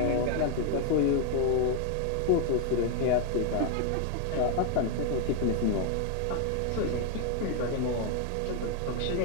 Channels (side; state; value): both; different; correlation 0.00